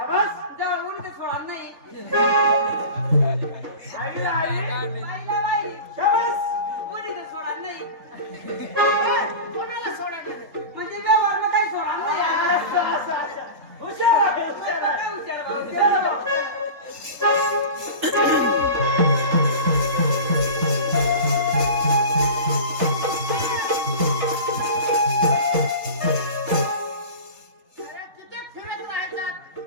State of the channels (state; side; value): late; left; 3.8 ms